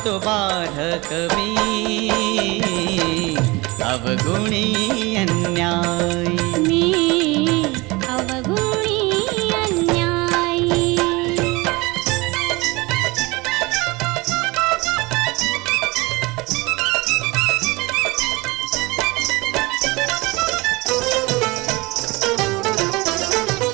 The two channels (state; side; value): quieter; left; 23.6 dB